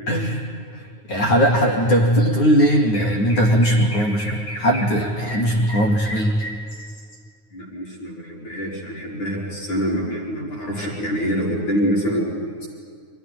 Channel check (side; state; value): right; late; 9.6 ms